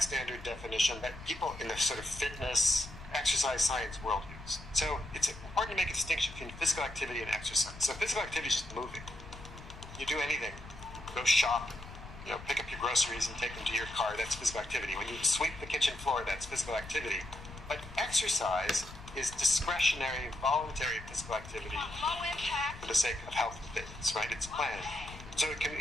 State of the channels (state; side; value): noise; left; rumble, 15 dB below the sound